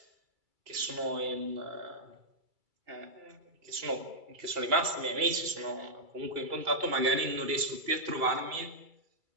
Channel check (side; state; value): left; late; 2.3 ms